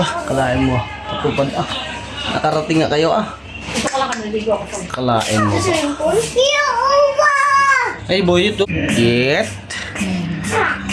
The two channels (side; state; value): both; identical; correlation 1.00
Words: kalain mo. Pagpupad, nakarating nga kayo, Ito ka lang naligo ako. Kalain mo. Uwa! Hey, boy, ito. Get.